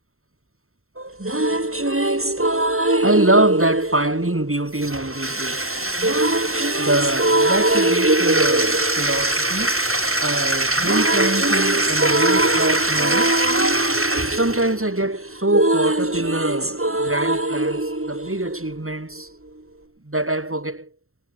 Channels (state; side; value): late; left; 0.62 ms